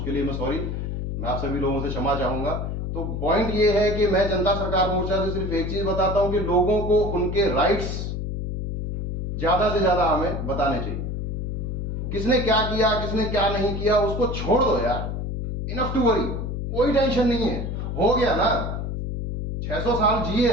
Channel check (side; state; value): left; noise; hum, 3 dB below the sound